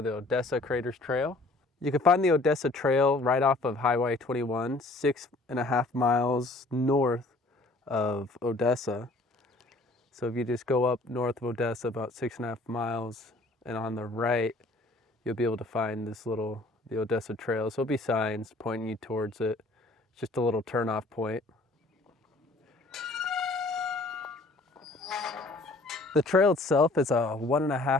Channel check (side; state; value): right; quieter; 3.0 dB